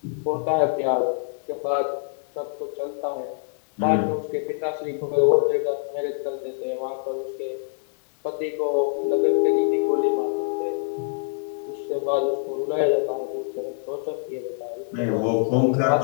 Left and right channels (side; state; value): right; silent; 62 dB below the other